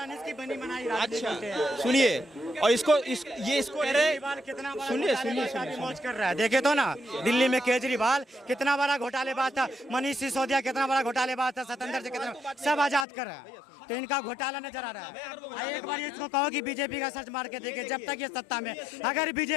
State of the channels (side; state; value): right; drops out; at 13.1 s